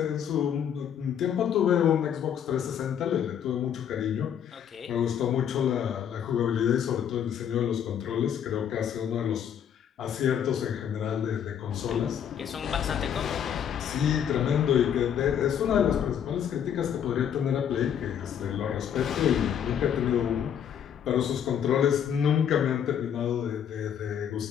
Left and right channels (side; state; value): right; quieter; 8.8 dB